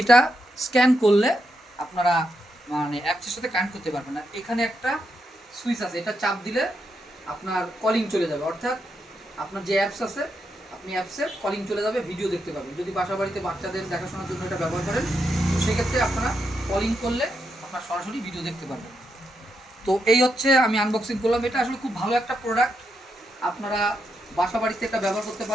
স্ক্যান করলে আপনারা মানে অ্যাপসের সাথে কানেক্ট করতে পারবেন। আর এখানে একটা সুইচ আছে, এটা চাপ দিলে আপনার কলিং চলে যাবে, অর্থাৎ আপনার যে অ্যাপস আছে আপনি অ্যাপসে কলিং চলে যাবে, ভিডিও দেখতে পাবেন। যদি বাসা বাড়িতে বাচ্চাদের দেখাশোনার জন্য এটা ব্যবহার করেন, তো সেক্ষেত্রে আপনারা কলিং করলে আপনার সরাসরি ভিডিও দেখতে পারবেন। তো এই হচ্ছে আমি আনবক্সিং করলাম। এটা আসলে খুব ভালো একটা প্রোডাক্ট, আপনারা বাসা বাড়িতে এটা ব্যবহার করতে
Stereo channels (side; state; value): both; normal; correlation 0.83